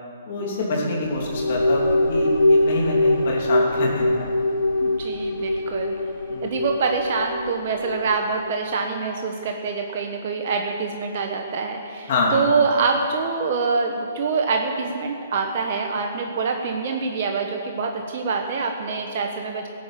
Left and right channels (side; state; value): both; inverted; correlation -0.69